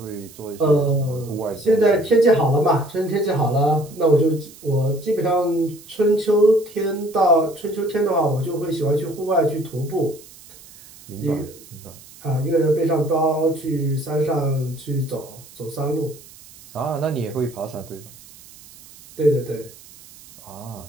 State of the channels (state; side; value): noise; right; hiss, 21 dB below the sound